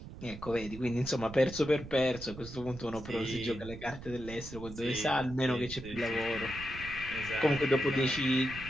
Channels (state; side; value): noise; right; rumble, 13 dB below the sound